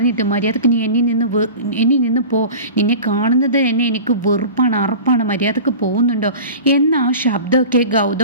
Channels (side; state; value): both; inverted; correlation -0.37